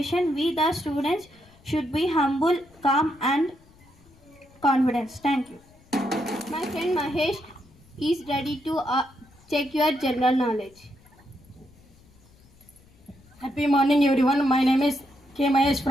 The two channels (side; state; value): left; noise; rumble, 28 dB below the sound